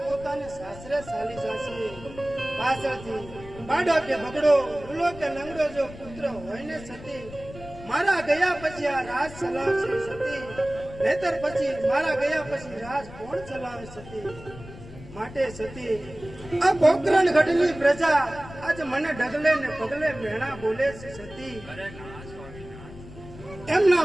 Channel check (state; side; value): noise; left; rumble, 16 dB below the sound